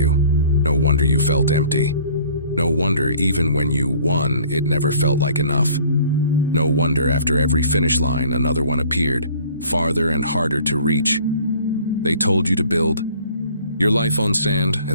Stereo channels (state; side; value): inverted; both; correlation -0.53